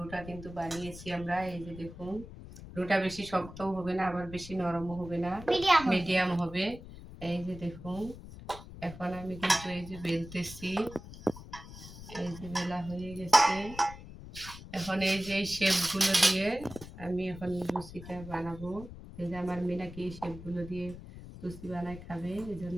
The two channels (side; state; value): left; noise; rumble, 14 dB below the sound